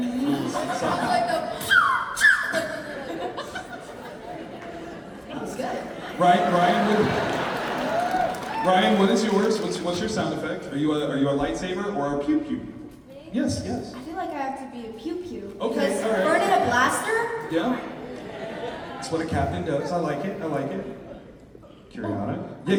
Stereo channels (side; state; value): both; identical; correlation 1.00